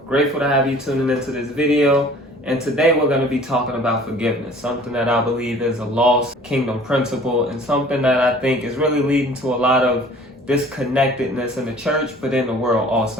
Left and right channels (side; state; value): both; normal; correlation 0.49